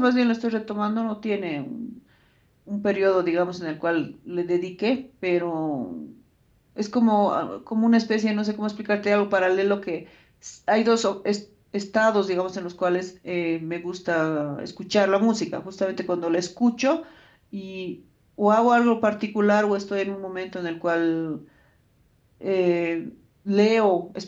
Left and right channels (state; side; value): identical; both; correlation 1.00